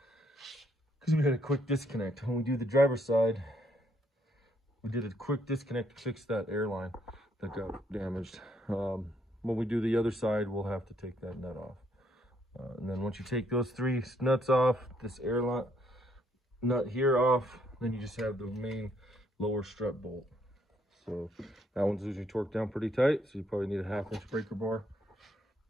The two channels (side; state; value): both; normal; correlation 0.71